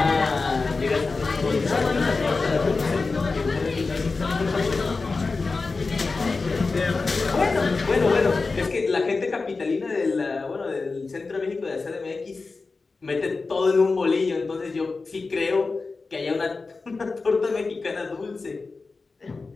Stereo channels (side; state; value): right; quieter; 4.0 dB